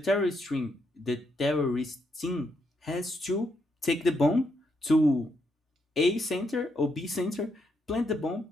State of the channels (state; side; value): normal; both; correlation 0.78